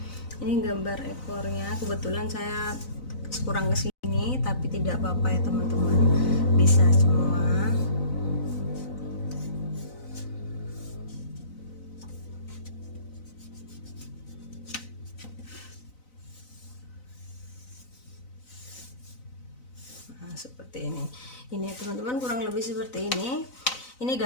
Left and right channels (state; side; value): late; right; 4.0 ms